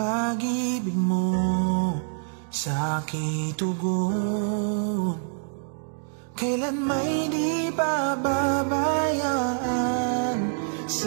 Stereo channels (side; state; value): left; silent; digital silence